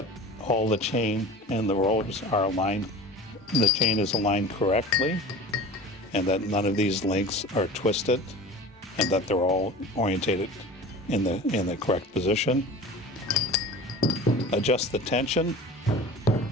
all the chain and the rollers are aligned. The chain is aligned correctly, and that none of these links are twisted, and that they're all orientated in the correct position. Adjust the tension.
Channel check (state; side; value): normal; both; correlation 0.37